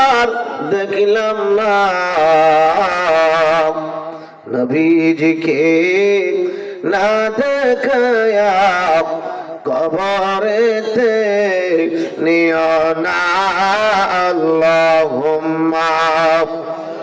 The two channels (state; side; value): identical; both; correlation 1.00